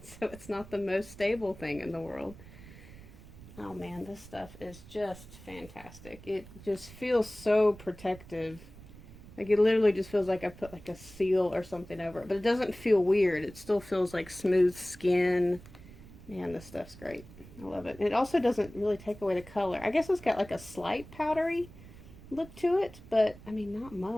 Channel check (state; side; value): noise; right; rumble, 18 dB below the sound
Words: it's not the most stable thing in the world. Oh man, this stuff is just fantastic. It just feels so protective. Like it literally just feels like I put like a seal or something over it. But it doesn't feel weird. It still feels like smooth skin. Man, this stuff's great. I love it. And it also doesn't really take away the color. I guess it's got like a slight powdery look to it, but I mean not